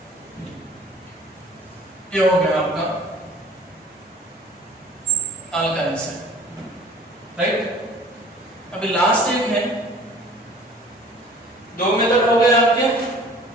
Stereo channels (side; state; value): both; normal; correlation 0.48